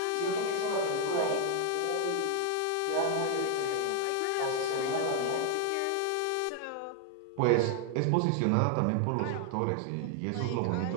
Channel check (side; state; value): both; different; correlation 0.00